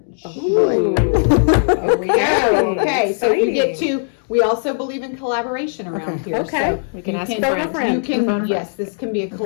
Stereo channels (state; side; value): silent; right; digital silence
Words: Ooh. Here we go. Okay, so you Exciting. get to, we also believe in collaboration around here. Okay. So We can you ask can, friends. friend. you can, Phone a yes, this can be a